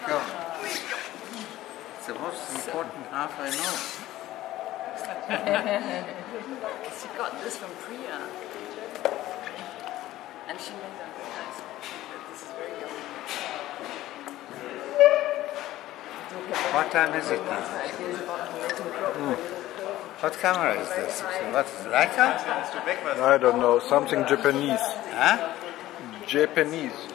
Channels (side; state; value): right; quieter; 15.3 dB